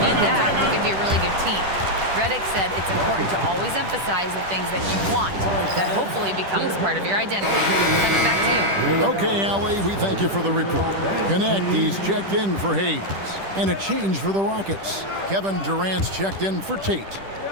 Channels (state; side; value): late; left; 10 ms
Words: that, we could be a really good team. Redick said it's important to always emphasize the things that you want. That hopefully becomes part of your identity. Coming back to you. Okay, Allie, we thank you for the report. Connect, he's checked in for Hayes. And a change for the Rockets. Kevin Durant's checked in for Tate.